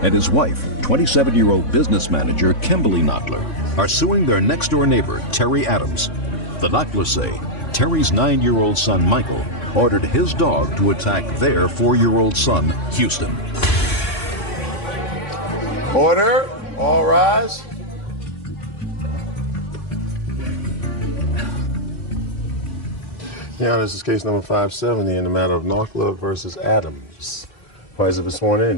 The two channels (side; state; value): right; late; 3.5 ms